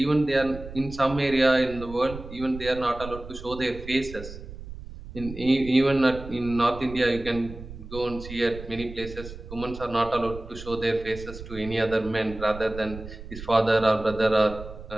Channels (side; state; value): right; noise; rumble, 13 dB below the sound